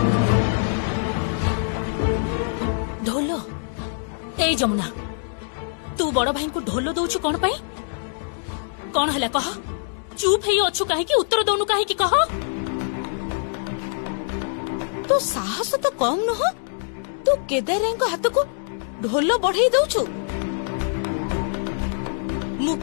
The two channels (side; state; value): right; silent; digital silence